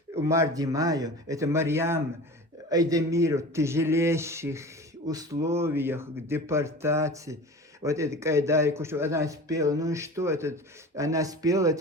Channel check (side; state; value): both; normal; correlation 0.36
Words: Умар Димаев, это Марьям Айдемиру, в тяжелейших условиях депортации. Вот это Кайдарик, что она спела, ну и что это, она спела,